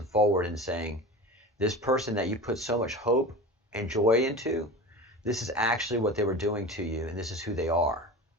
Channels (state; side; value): normal; both; correlation 0.31